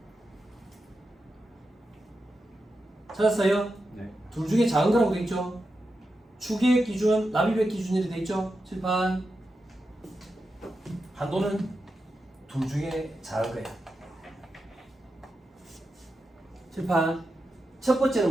찾았어요? 네. 둘 중에 작은 거라고 돼 있죠? 추계획 기준, 납입액 기준이 돼 있죠? 칠판. 한도는 둘 중에 작은 거야. 칠판. 첫 번째는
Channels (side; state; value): both; normal; correlation 0.89